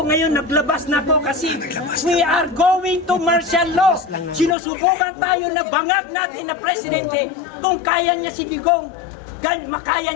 ngayon naglabas na ako kasi we are going to martial law. Sinusubukan tayo na bangag natin na presidente kung kaya niya si Digong, makaya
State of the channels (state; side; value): drops out; right; at 4.5 s